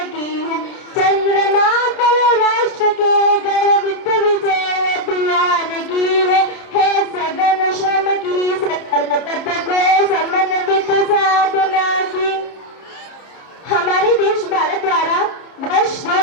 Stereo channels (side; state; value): right; late; 30 ms